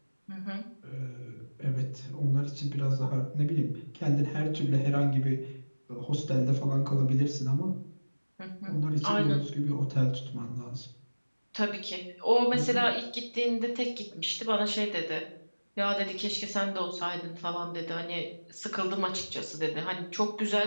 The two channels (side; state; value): both; inverted; correlation -1.00